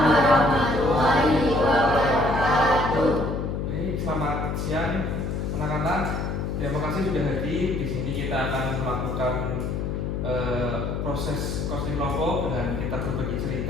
warahmatullahi wabarakatuh. Baik, selamat siang anak-anak. Terima kasih sudah hadir. Di sini kita akan melakukan proses coaching kelompok dengan kita berbagi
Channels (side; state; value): left; noise; hum, 2 dB below the sound